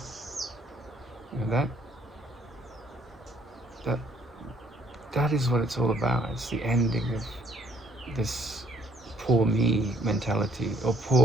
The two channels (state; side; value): normal; both; correlation 0.63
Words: You know, that is what it's all about. It's the ending of this poor me mentality, or